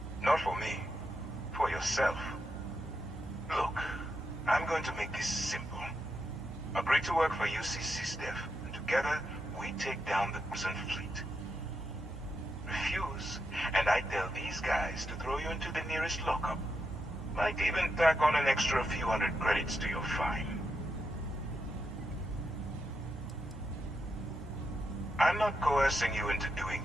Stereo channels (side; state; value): both; normal; correlation 0.84